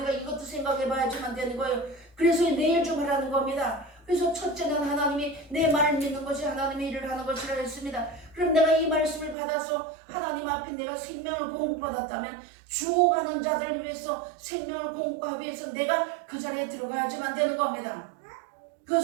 이것도 생각해 봐야지만 되는 거예요. 그래서 내일 좀 하라는 겁니다. 그래서 첫째는 하나님이 내 말을 믿는 것이 하나님의 일을 하는 것이라 했습니다. 그럼 내가 이 말씀을 받아서 하나님 앞에 내가 생명을 공급받았다면 죽어가는 자들을 위해서 생명을 공급하기 위해서 내가 그 자리에 들어가야지만 되는 겁니다.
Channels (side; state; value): left; drops out; at 9.3 s